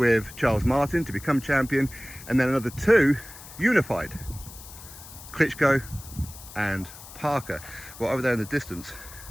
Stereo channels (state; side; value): noise; left; hiss, 16 dB below the sound